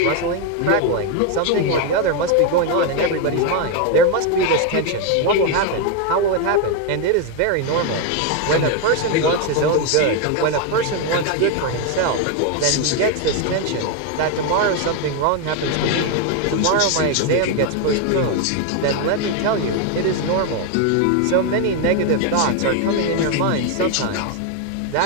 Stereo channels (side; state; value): both; different; correlation 0.01